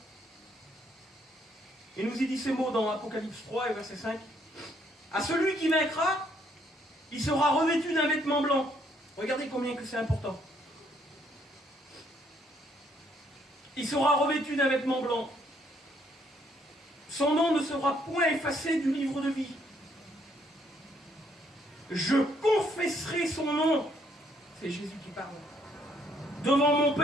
Il nous y dit ces mots dans Apocalypse 3 et verset 5. À celui qui vaincra, il sera revêtu d'un vêtement blanc. Regardez combien que c'est important. Il sera revêtu d'un vêtement blanc. Son nom ne sera point effacé du livre de vie. Je confesserai son nom. C'est Jésus qui parle. Devant mon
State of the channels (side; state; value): both; normal; correlation 0.69